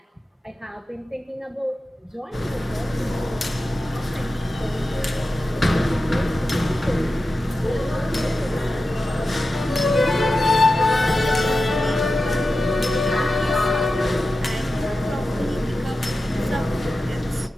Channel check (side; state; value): both; normal; correlation 0.92